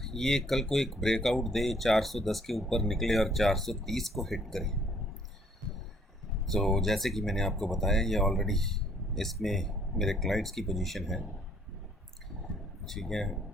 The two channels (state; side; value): normal; both; correlation 0.62